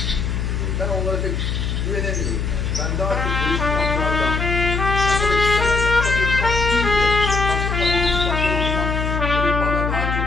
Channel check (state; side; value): noise; left; hum, 1 dB below the sound